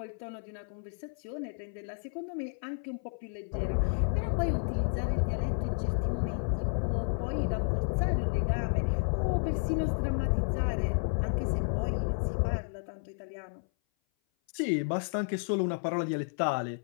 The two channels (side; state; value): right; silent; 57 dB below the other